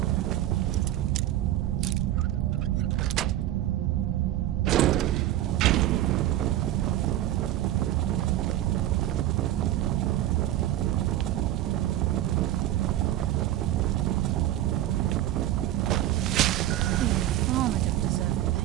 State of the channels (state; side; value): quieter; left; 13.4 dB